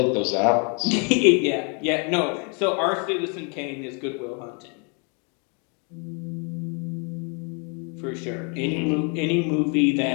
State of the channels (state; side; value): quieter; right; 36.3 dB